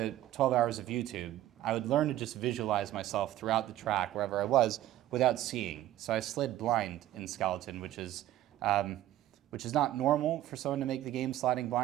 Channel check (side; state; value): left; quieter; 13.9 dB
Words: 12 hours of YouTube, I would learn to just visualize myself throughout the track, wherever I was, without seeing. So I slid blind in skeleton, which is not normal for someone to make the game sliding